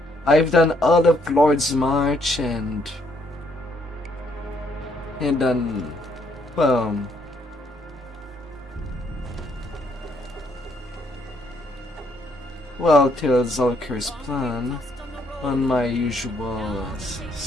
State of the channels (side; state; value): both; normal; correlation 0.70